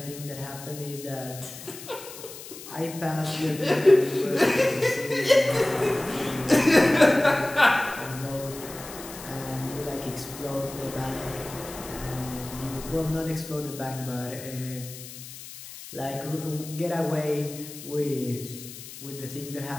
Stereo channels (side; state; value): left; noise; hiss, 14 dB below the sound